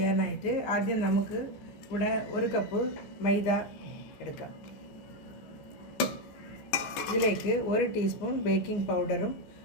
ആദ്യം നമുക്ക് ഇവിടെ 1 കപ്പ് മൈദ എടുക്കാം. ഇതിലേക്ക് 1 ടീസ്പൂൺ ബേക്കിംഗ് പൗഡറും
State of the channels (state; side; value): late; right; 15 ms